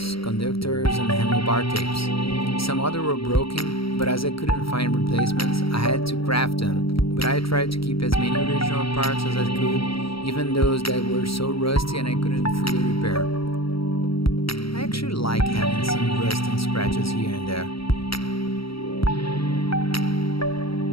conductors, and handlebar tapes. Some other were broken, but as I couldn't find replacements, I had to craft them. But I tried to keep as many original parts as I could, even those that were so rusty and I couldn't fully repair. I actually like having some rust and scratches here and there.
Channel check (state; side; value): late; right; 0.75 ms